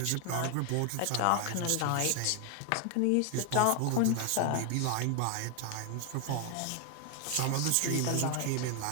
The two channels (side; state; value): both; different; correlation 0.01